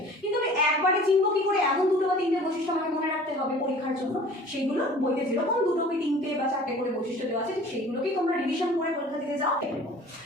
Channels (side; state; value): both; normal; correlation 0.46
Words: কিন্তু আমি একবারে চিনব কি করে এমন 2 বা 3টে বৈশিষ্ট্য আমাকে মনে রাখতে হবে পরীক্ষার জন্য। সেইগুলো বইতে যেরকম 2 কি 3টে বা 4টে করে বৈশিষ্ট্য দেওয়া আছে সেইগুলোকেই তোমরা রিভিশন করে পরীক্ষা দিতে যাও।